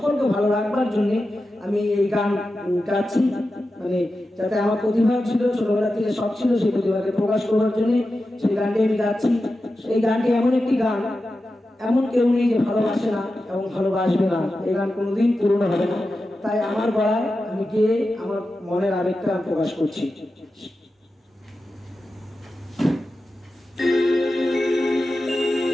ভালো রাখবার জন্য আমি এই গান গাচ্ছি। মানে যাতে আমার প্রতিভা ছিল, ছোটবেলা থেকে শখ ছিল, সেই প্রতিভাকে প্রকাশ করবার জন্য সেই গানটি আমি গাচ্ছি। এই গানটি এমন একটি গান, এমন কেউ নেই যে ভালোবাসে না এবং ভালোবাসবে না। এই গান কোনোদিন পুরনো হবে না। তাই আমার গলায় আমি গিয়ে আমার মনের আবেগটা প্রকাশ করছি।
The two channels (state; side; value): normal; both; correlation 0.92